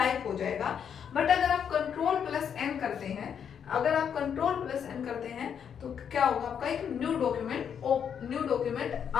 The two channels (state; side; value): quieter; right; 7.9 dB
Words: हो जाएगा। बट अगर आप कंट्रोल प्लस एन करते हैं, अगर आप कंट्रोल प्लस एन करते हैं तो क्या होगा, आपका एक न्यू डॉक्यूमेंट